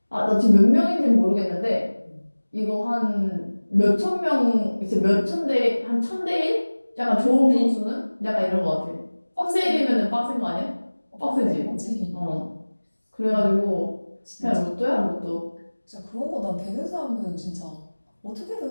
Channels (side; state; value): both; inverted; correlation -1.00